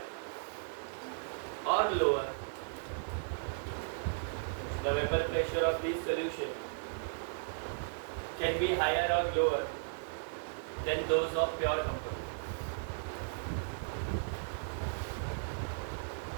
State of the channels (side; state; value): left; silent; digital silence